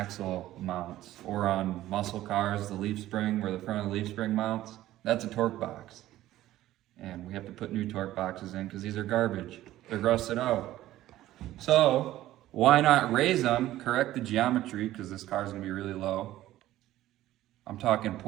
mounts, or on muscle cars, the leaf spring, where the front of the leaf spring mounts. That's a torque box. And we have to put new torque boxes in because these are garbage. They're rusted out. So why not raise them, correct the geometry, because this car is going to be really low. I'm talking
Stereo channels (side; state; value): left; quieter; 14.6 dB